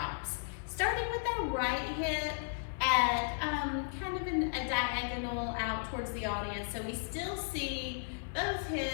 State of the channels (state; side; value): silent; right; 55 dB below the other